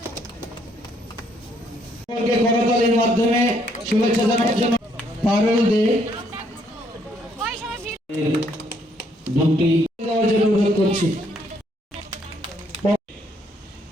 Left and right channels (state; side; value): normal; both; correlation 0.69